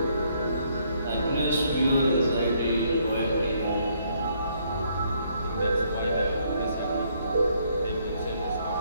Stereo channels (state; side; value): inverted; both; correlation -0.69